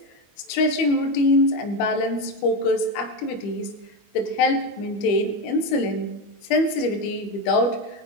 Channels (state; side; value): late; right; 25 ms